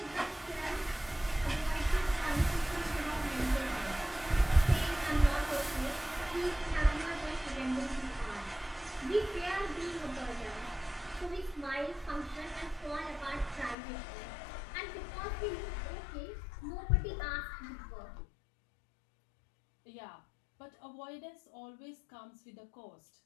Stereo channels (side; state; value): right; drops out; at 13.8 s